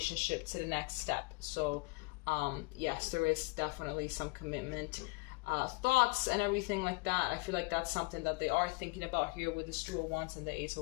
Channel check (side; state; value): right; quieter; 27.1 dB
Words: to the next step. So, yes, there is definitely some commitment. Thoughts and everything like that. I feel like that's something that they are thinking about here with the Two of Wands and the Ace